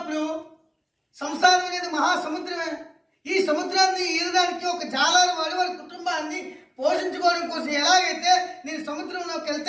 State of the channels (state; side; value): identical; both; correlation 1.00